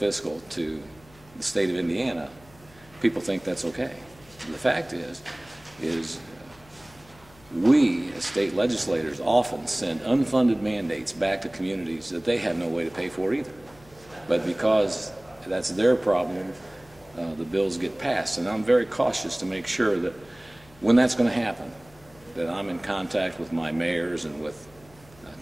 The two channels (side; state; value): left; noise; hum, 25 dB below the sound